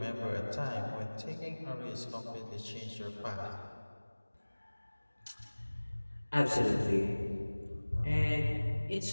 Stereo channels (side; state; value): both; inverted; correlation -1.00